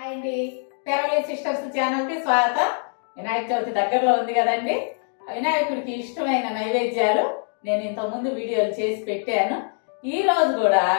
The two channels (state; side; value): silent; right; 58 dB below the other